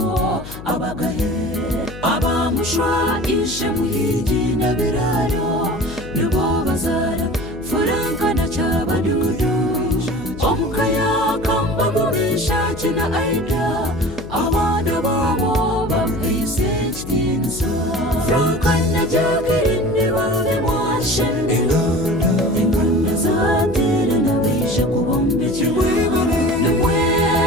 abagahe, abamushwa ishe muhigi na biraro, nibo bazara furanka na cyabadudu, omukaya kamba mumisha kina aida, abana babo bamwise kitinza, franka na jacline babe mwashen, inganda zatere na bisha kubombe kimwebare,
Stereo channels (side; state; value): left; noise; hum, 13 dB below the sound